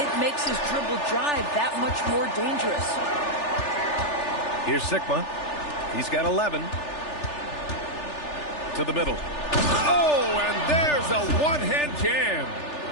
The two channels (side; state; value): right; late; 3.4 ms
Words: it makes his dribble drive that much more dangerous. Here's Sigma. He's got 11. To the middle. Oh, and there's a one-hand jam.